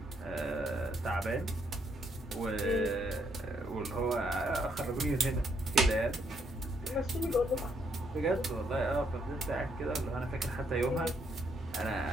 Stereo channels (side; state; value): both; normal; correlation 0.73